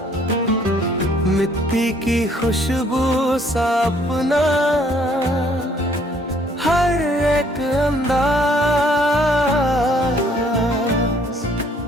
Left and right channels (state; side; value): normal; both; correlation 0.62